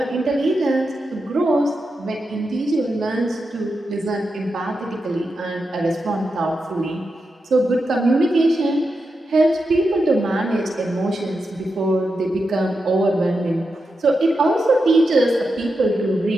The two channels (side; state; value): both; normal; correlation 0.88